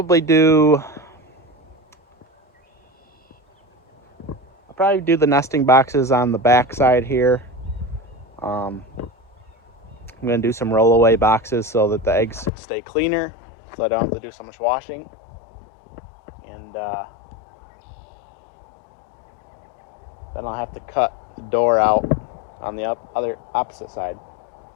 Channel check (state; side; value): drops out; right; at 12.5 s